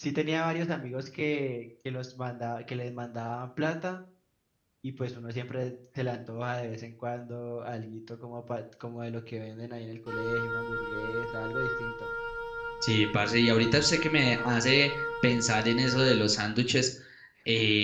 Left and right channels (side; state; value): both; identical; correlation 1.00